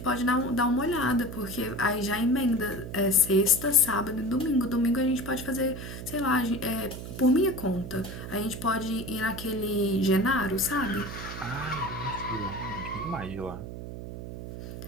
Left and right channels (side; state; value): right; noise; hum, 9 dB below the sound